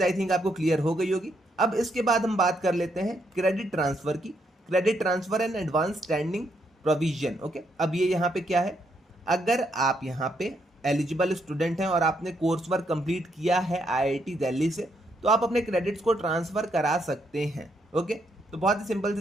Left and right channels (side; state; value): both; normal; correlation 0.76